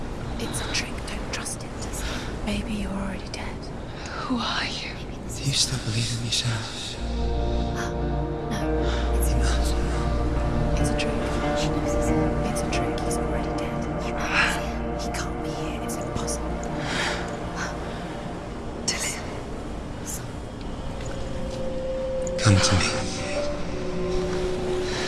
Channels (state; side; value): identical; both; correlation 1.00